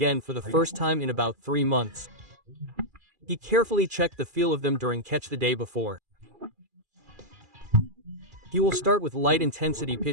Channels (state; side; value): late; left; 2.4 ms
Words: for the first time in about 3 months. He carefully checked the feel of them during catch the day before. He will start with light-intensity